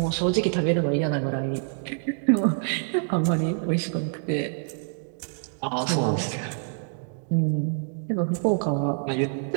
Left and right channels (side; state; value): left; silent; digital silence